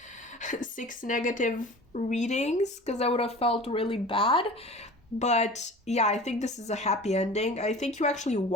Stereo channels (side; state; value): both; normal; correlation 0.39